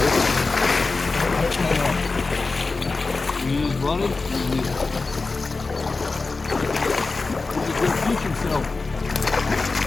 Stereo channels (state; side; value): quieter; right; 3.9 dB